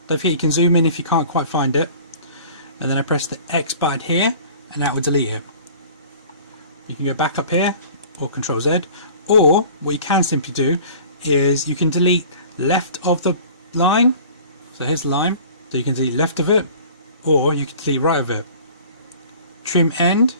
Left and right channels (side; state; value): both; inverted; correlation -0.46